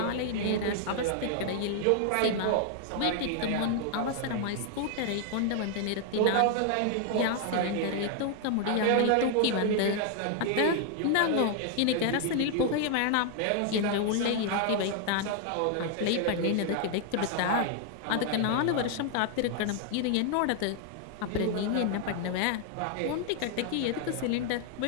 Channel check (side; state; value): both; different; correlation 0.00